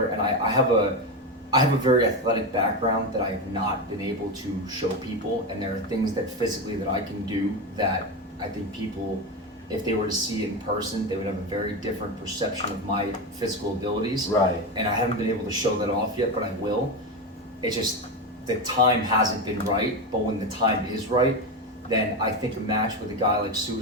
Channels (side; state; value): both; normal; correlation 0.16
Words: and I have a very athletic background that I have not been able to show people, and there are things that physically that I can do that I think people, if they were to see it in person, they would have a very different perception of my physical abilities. Right. And I haven't been able to show that off yet, but I will. It's just the time hasn't been right, but when the time is right, then I think a match with a guy like